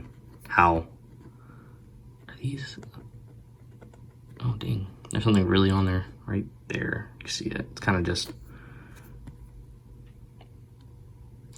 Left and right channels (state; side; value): identical; both; correlation 1.00